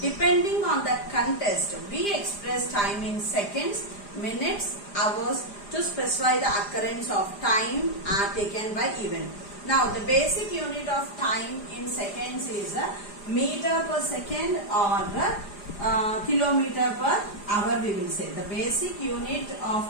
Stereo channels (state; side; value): late; right; 4.9 ms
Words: Depending on the contest, we express time in seconds, minutes, hours to specify the occurrence of time taken by event. Now, the basic unit of time in seconds is meter per second or kilometer per hour we will say. The basic unit